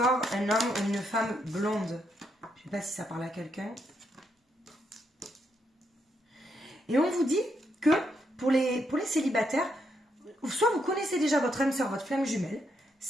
un homme ou une femme blonde. Je ne sais pas si ça parle à quelqu'un. Et on vous dit que pour les célibataires, soit vous connaissez déjà votre âme sœur, votre flamme jumelle,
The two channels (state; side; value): normal; both; correlation 0.78